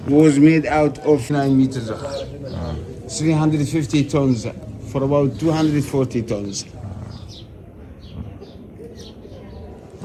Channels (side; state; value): both; identical; correlation 1.00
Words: was made out of 9 meters high. 350 tons for about 240 tons.